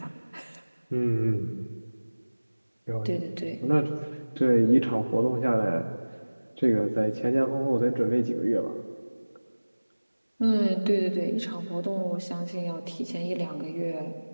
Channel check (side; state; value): both; inverted; correlation -1.00